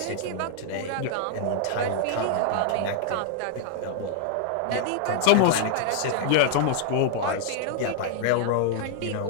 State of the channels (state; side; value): different; both; correlation -0.01